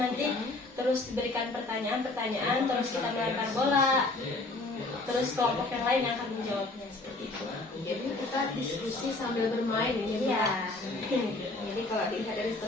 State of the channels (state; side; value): quieter; right; 3.1 dB